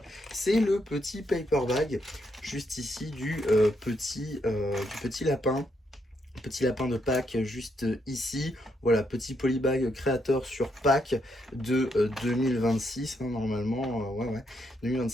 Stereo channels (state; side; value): normal; both; correlation 0.77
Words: c'est le petit paper bag juste ici du petit lapin. Petit lapin de Pâques juste ici. Voilà, petit polybag créateur sur Pâques de 2026, hein, normalement. Ouais, ouais.